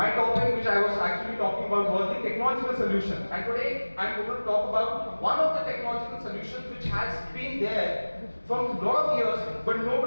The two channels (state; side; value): inverted; both; correlation -1.00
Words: topic which I was actually talking about was the technological solution, and today I am going to talk about one of the technological solutions which has been there for a lot of years, but